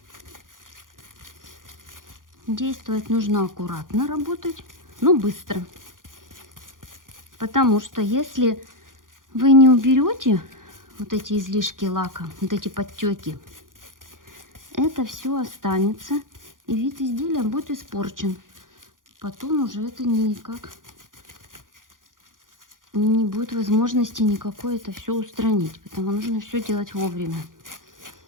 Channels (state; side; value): late; left; 0.89 ms